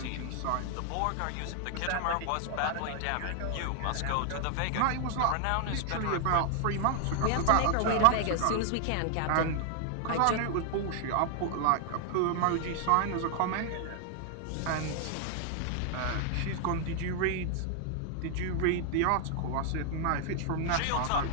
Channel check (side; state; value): both; different; correlation 0.00